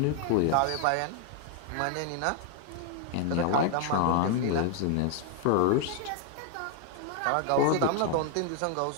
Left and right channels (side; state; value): both; different; correlation 0.00